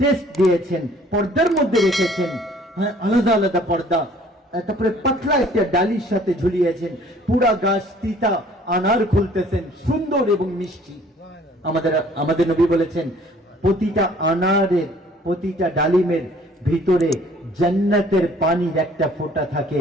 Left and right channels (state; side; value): normal; both; correlation 0.55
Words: টেস্ট দিয়েছেন, পর্দার মধ্যে রেখেছেন, হ্যাঁ, আলাদা আলাদা পর্দা, তারপরে পাতলা একটা ডালির সাথে ঝুলিয়েছেন, পুরা গাছ তিতা, আনার খুলতেছেন, সুন্দর এবং মিষ্টি। আমাদের নবী বলেছেন, প্রতিটা আনারের, প্রতিটা ডালিমের ভিতরে জান্নাতের পানির একটা ফোঁটা থাকে,